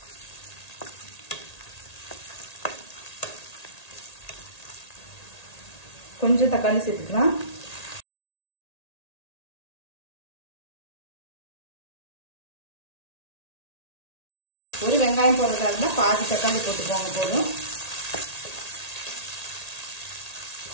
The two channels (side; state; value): right; late; 1.8 ms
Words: கொஞ்சம் தக்காளி சேர்த்துக்கலாம். ஒரு வெங்காயம் போடுறதா இருந்தால் பாதி தக்காளி போட்டுக்கோங்க போதும்.